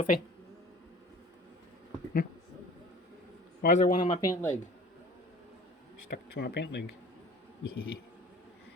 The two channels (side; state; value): both; normal; correlation 0.45